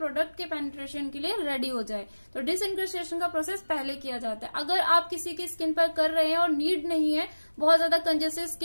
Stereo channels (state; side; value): inverted; both; correlation -1.00